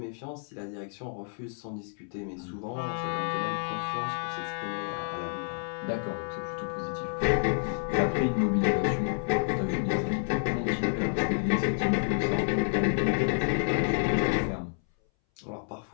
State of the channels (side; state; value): right; silent; 58 dB below the other